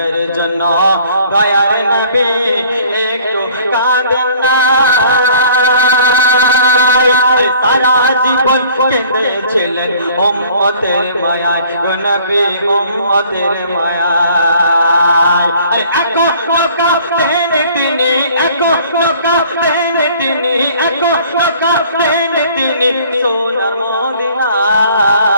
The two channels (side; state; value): both; inverted; correlation -0.54